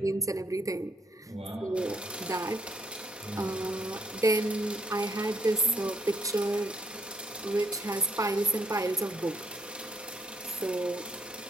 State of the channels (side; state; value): both; normal; correlation 0.72